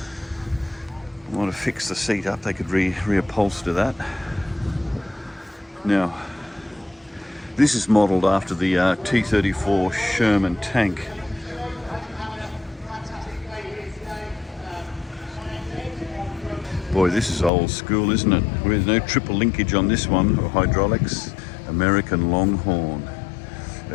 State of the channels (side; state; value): right; drops out; at 17.5 s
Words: I want to fix the seat up. They could reupholster that. Now, this is modelled after the T-34 Sherman tank. Boy, this is old school, isn't it? There's no triple linkage on this one, or hydraulics. American Longhorn,